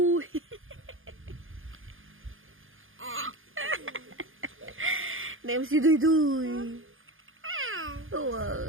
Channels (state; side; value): late; left; 0.59 ms